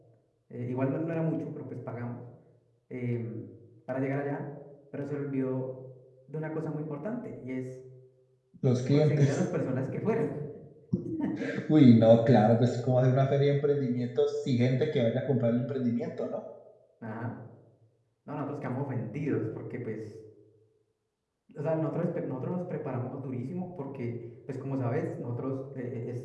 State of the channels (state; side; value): identical; both; correlation 1.00